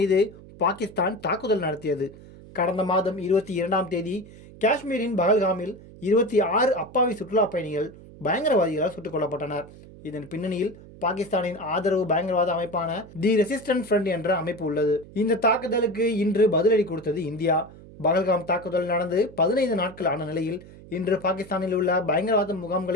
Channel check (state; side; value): noise; right; hum, 19 dB below the sound